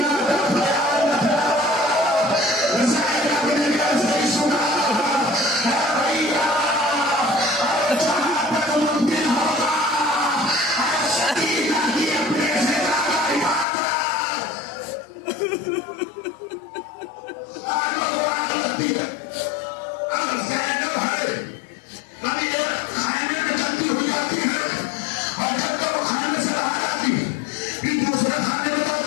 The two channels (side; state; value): right; drops out; at 13.7 s